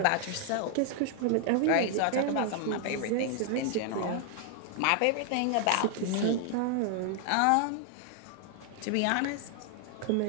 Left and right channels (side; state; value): both; different; correlation 0.00